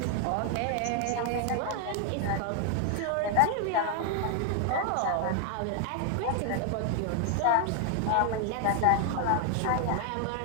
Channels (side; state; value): both; different; correlation 0.00